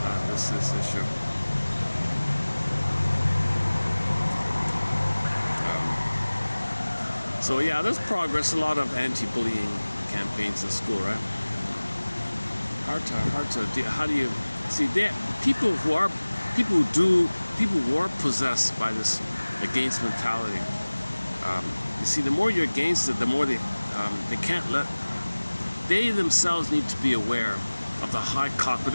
This issue. So yeah, there's progress. A lot of anti-bullying campaigns in school, right? Hard to. How do you see that? People who are possessed by this against mentality. You see, the more you're against it, the more they can't let. They themselves need to be aware of the high cost, but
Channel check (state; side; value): inverted; both; correlation -1.00